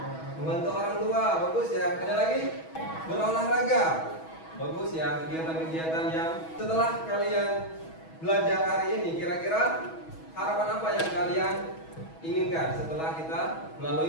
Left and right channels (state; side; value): late; right; 6.2 ms